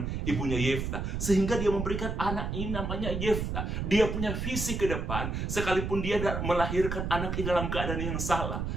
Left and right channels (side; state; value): right; noise; rumble, 2 dB below the sound